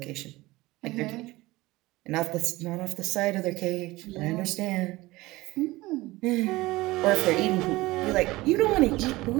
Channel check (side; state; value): left; quieter; 19.9 dB